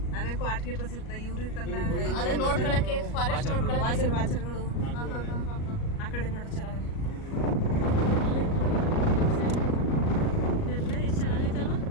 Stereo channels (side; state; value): right; late; 38 ms